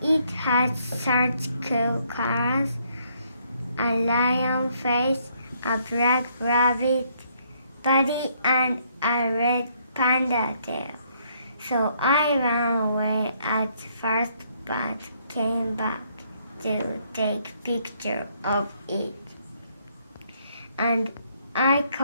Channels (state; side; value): inverted; both; correlation -0.69